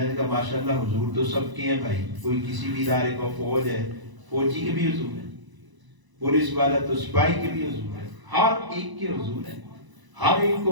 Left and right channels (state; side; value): late; left; 1.0 ms